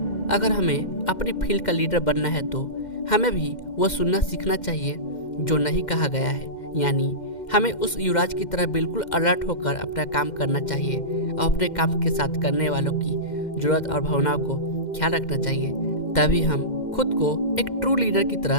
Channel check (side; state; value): right; late; 2.1 ms